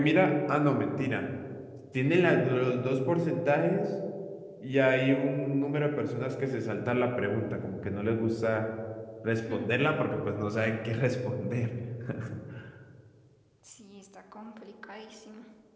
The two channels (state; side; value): identical; both; correlation 1.00